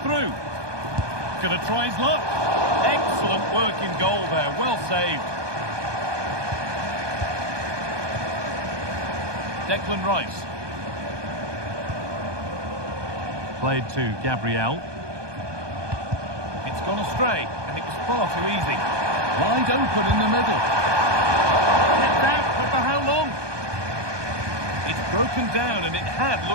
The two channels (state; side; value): late; left; 1.2 ms